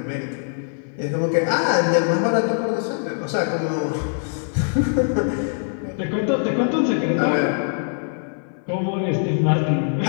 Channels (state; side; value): silent; right; 64 dB below the other